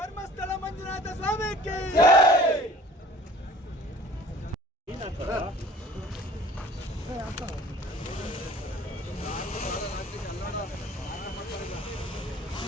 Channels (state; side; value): normal; both; correlation 0.49